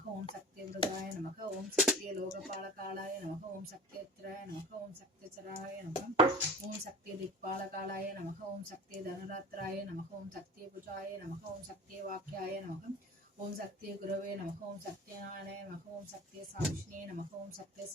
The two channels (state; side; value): normal; both; correlation 0.37